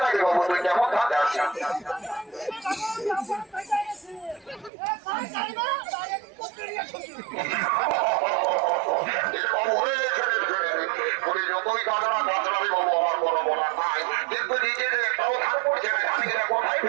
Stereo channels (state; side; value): drops out; left; at 4.7 s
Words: নাকি বাবু তুই কেমন ধান যাচ্ছিস যতই কাজরা কাজরাবি বাবু আমার কোনো বলার নাই কিন্তু নিজেদের একটাও ধান পড়ছে না ধান কোথায়